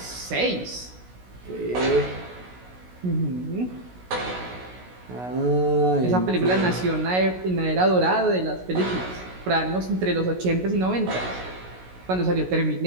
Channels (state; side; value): late; left; 16 ms